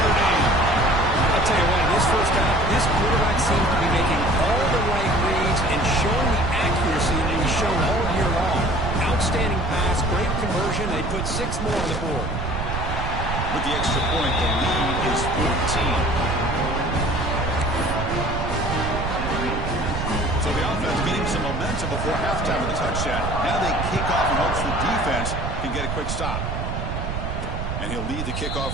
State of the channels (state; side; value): noise; right; rumble, 3 dB below the sound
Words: Dame. I'll tell you what, in this first half, this quarterback seems to be making all the right reads and showing the accuracy that he's shown all year long. Outstanding pass, great conversion. They put 6 more on the board. With the extra point, the lead is 14. So the offense getting some momentum before halftime with a touchdown. Now they kick off in hopes the defense can get a quick stop. And he'll lead the kickoff